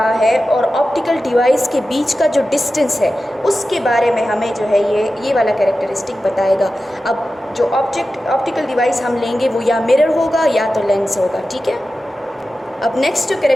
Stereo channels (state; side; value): normal; both; correlation 0.93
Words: है और ऑप्टिकल डिवाइस के बीच का जो डिस्टेंस है उसके बारे में हमें जो है ये वाला कैरेक्टरिस्टिक बताएगा। अब जो ऑप्टिकल डिवाइस हम लेंगे वो या मिरर होगा या तो लेंस होगा, ठीक है। अब नेक्स्ट जो